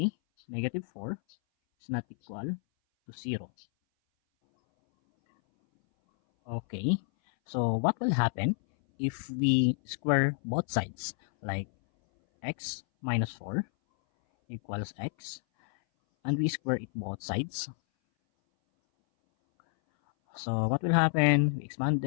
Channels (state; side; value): silent; right; 58 dB below the other